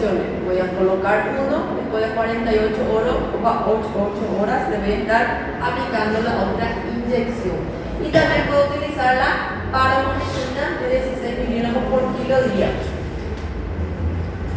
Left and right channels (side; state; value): both; identical; correlation 1.00